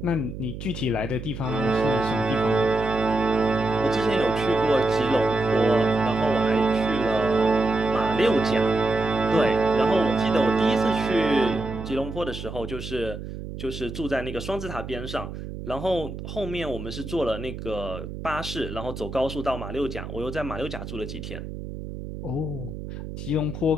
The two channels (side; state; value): right; noise; hum, 9 dB below the sound